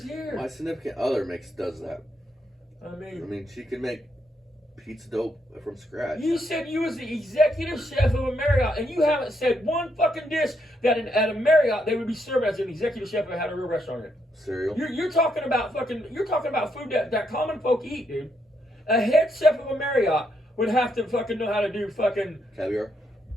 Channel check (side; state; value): both; normal; correlation 0.77